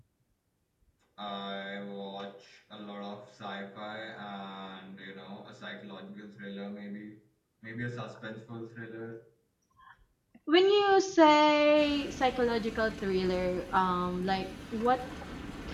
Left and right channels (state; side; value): identical; both; correlation 1.00